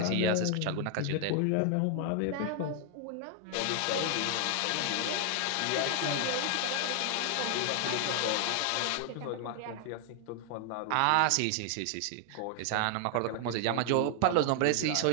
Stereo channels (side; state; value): both; different; correlation 0.00